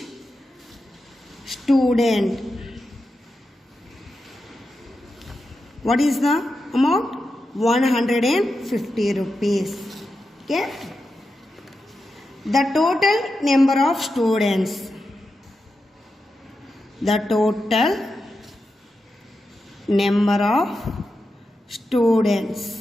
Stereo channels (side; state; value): both; normal; correlation 0.89